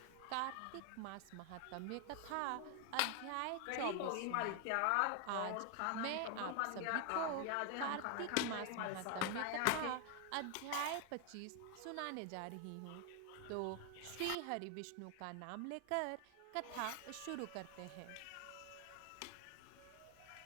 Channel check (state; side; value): different; both; correlation 0.00